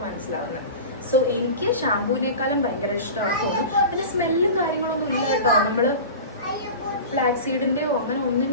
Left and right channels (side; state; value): both; inverted; correlation -0.33